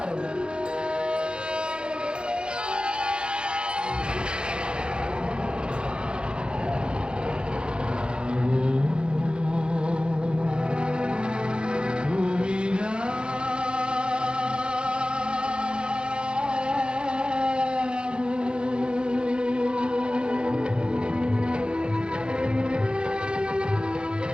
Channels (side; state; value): left; late; 0.051 ms